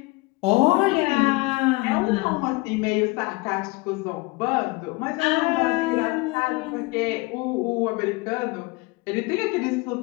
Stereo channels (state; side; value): quieter; right; 23.7 dB